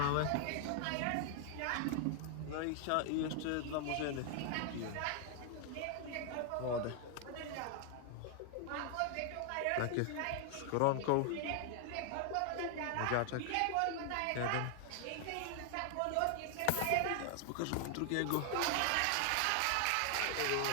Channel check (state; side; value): different; both; correlation 0.00